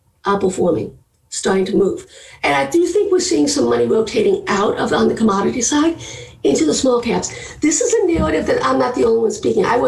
Outperforming, starting to move. And I do think we're seeing some money rotating out of on the commodity side into the small caps. This is a narrative that I'm not the only one speaking. I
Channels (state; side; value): identical; both; correlation 1.00